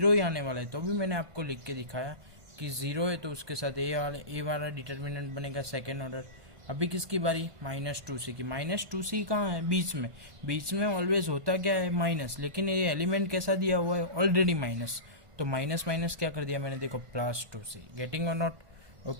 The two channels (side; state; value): left; late; 1.5 ms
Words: ही आने वाला है। तो अभी मैंने आपको लिख के दिखाया कि ज़ीरो है तो उसके साथ ए वाला डिटर्मिनेंट बनेगा सेकेंड ऑर्डर। अभी किसकी बारी? माइनस 2C की। माइनस 2C कहाँ है? बीच में ऑलवेज होता क्या है? माइनस। लेकिन ये एलिमेंट कैसा दिया हुआ है? Already minus. तो माइनस माइनस क्या कर दिया मैंने? देखो, प्लस 2C। गेटिंग और नॉट?